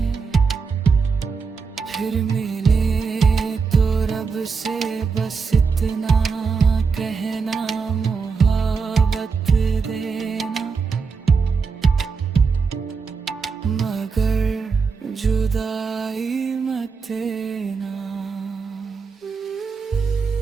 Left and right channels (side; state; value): left; quieter; 5.2 dB